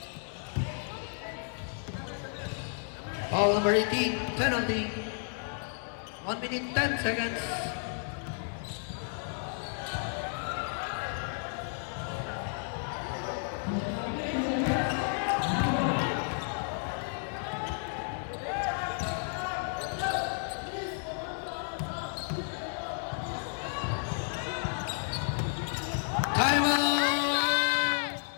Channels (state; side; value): silent; right; 56 dB below the other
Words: Foul number 18. Penalty. 1 minute 10 seconds. Time out!